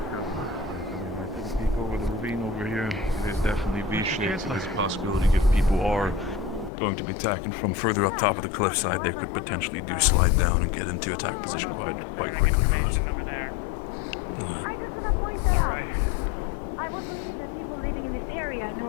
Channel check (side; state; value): right; drops out; at 6.7 s